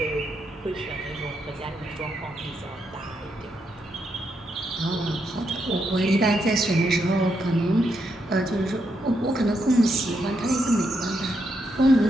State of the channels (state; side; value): normal; both; correlation 0.80